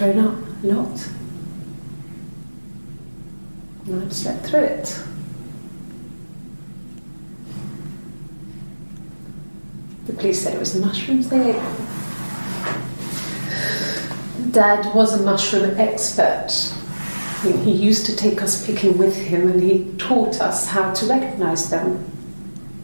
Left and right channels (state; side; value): inverted; both; correlation -1.00